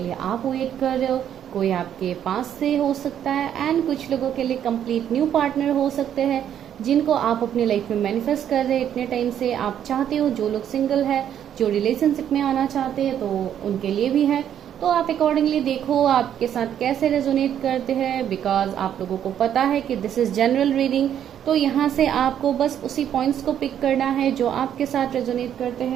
आप वेट कर रहे हो, कोई आपके पास से हो सकता है, एंड कुछ लोगों के लिए कंप्लीट न्यू पार्टनर हो सकते हैं जिनको आप अपनी लाइफ में मैनिफेस्ट कर रहे हैं इतने टाइम से। आप चाहते हो, जो लोग सिंगल है, जो रिलेशनशिप में आना चाहते हैं, तो उनके लिए भी है। तो आप अकॉर्डिंगली देखो आपके साथ कैसे रेजोनेट करते हैं, बिकॉज आप लोगों को पता है कि दिस इज जनरल रीडिंग। तो यहाँ से आपको बस उसी पॉइंट्स को पिक करना है जो आपके साथ रेजोनेट करते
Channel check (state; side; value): quieter; left; 9.8 dB